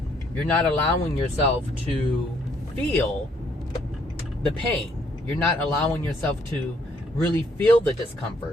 You're not allowing yourself to feel the pain. You're not allowing yourself to really feel the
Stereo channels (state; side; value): normal; both; correlation 0.68